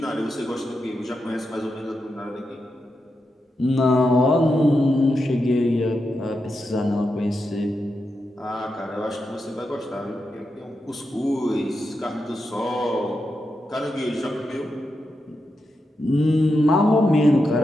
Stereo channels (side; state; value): both; normal; correlation 0.87